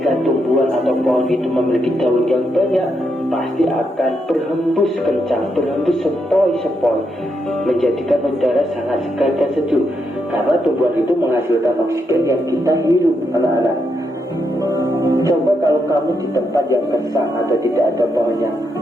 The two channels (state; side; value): normal; both; correlation 0.80